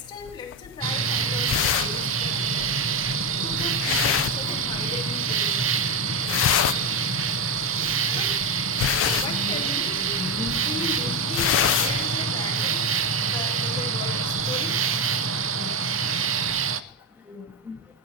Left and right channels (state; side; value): normal; both; correlation 0.11